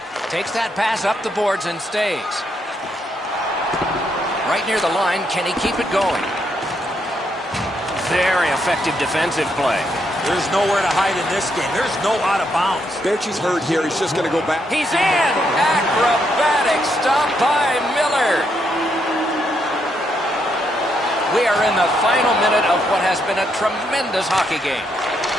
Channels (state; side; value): normal; both; correlation 0.77